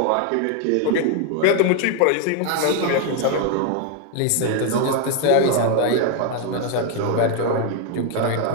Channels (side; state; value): both; different; correlation 0.01